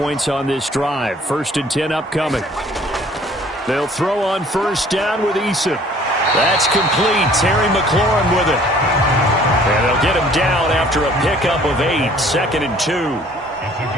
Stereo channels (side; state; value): both; normal; correlation 0.55